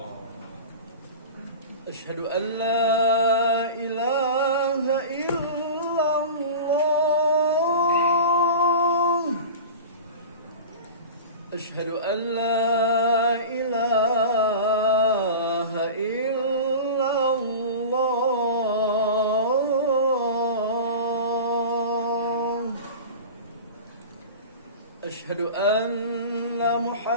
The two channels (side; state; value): both; inverted; correlation -0.32